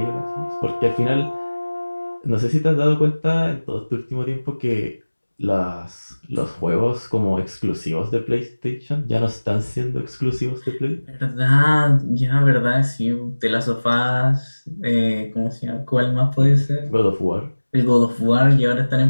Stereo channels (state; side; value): inverted; both; correlation -1.00